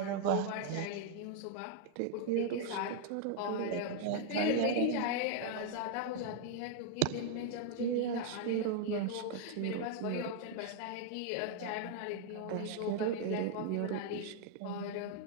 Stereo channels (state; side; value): different; both; correlation 0.00